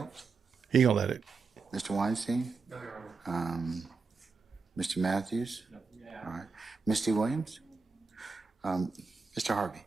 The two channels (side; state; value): left; quieter; 4.6 dB